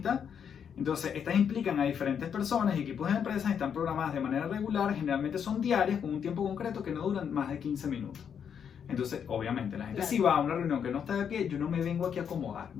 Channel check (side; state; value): right; quieter; 7.7 dB